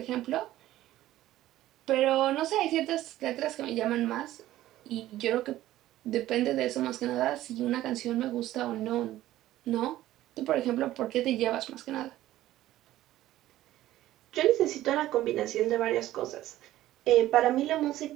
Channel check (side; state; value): left; quieter; 14.6 dB